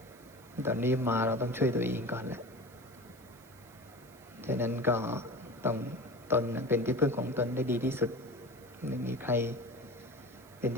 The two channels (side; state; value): right; noise; hiss, 25 dB below the sound